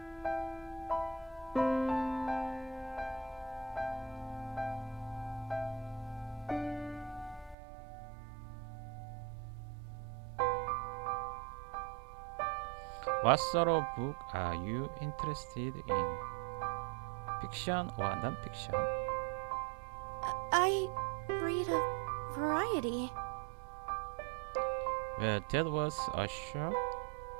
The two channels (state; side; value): drops out; left; at 7.6 s